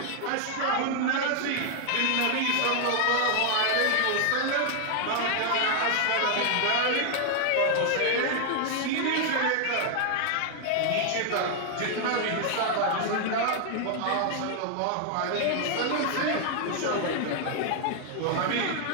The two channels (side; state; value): both; different; correlation 0.00